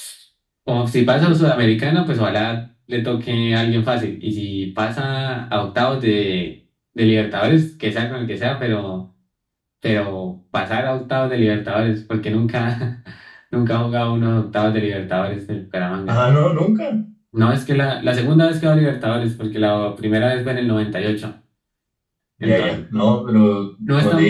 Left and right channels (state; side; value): identical; both; correlation 1.00